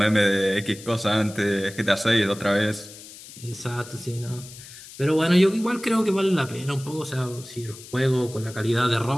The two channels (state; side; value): noise; left; hiss, 17 dB below the sound